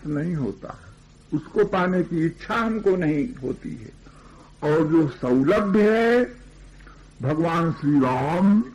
नहीं होता, उसको पाने की इच्छा हमको नहीं होती है। और जो सौलभ्य है, भगवान श्री राम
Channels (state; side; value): identical; both; correlation 1.00